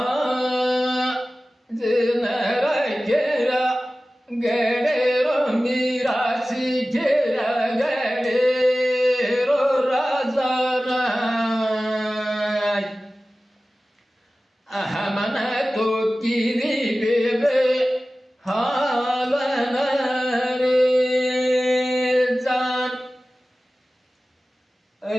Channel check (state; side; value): normal; both; correlation 0.96